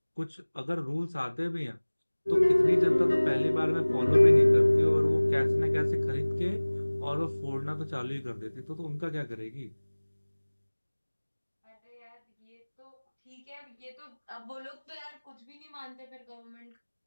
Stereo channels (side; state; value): both; inverted; correlation -1.00